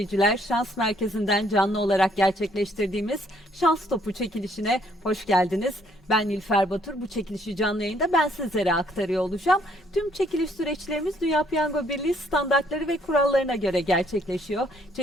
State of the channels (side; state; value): both; normal; correlation 0.66